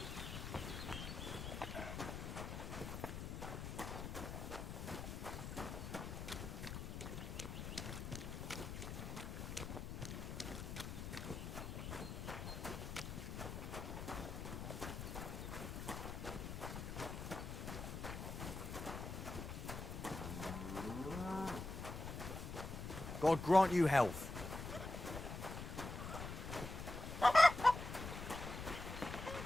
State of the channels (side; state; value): left; noise; rumble, 6 dB below the sound